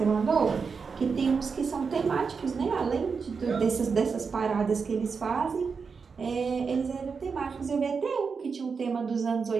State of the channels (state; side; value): quieter; left; 5.4 dB